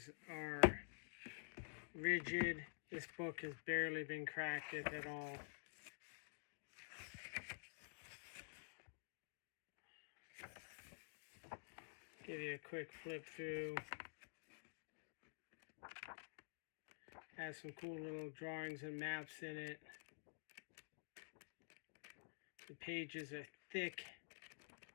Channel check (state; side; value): silent; right; digital silence